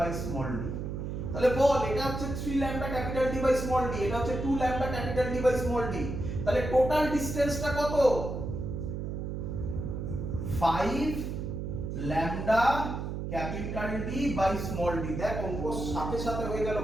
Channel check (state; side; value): noise; right; hum, 4 dB below the sound